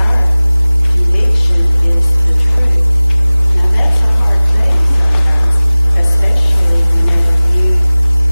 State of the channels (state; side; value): inverted; both; correlation -0.99